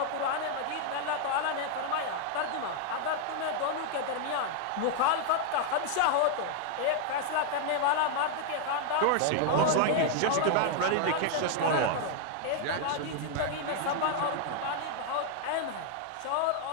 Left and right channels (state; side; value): different; both; correlation 0.00